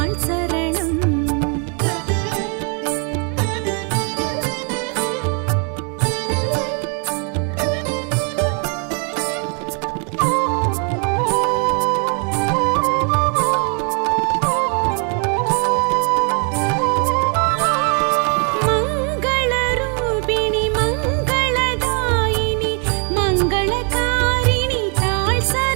शरणम् मङ्गलरूपिणि मङ्गलदायिनि मङ्गलकारिणि ताळ्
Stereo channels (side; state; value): left; quieter; 38.6 dB